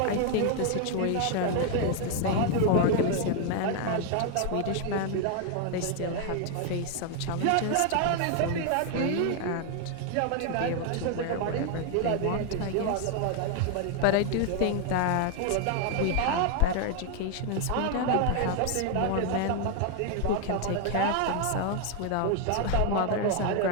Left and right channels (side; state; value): both; different; correlation 0.00